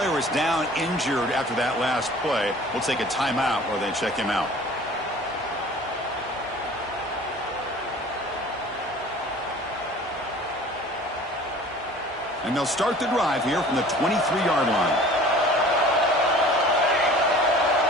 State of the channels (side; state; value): both; normal; correlation 0.46